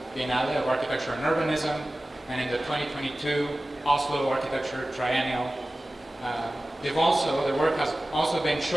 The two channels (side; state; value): both; normal; correlation 0.96